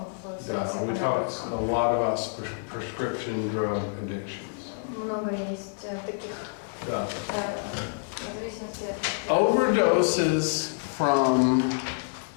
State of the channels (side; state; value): right; silent; digital silence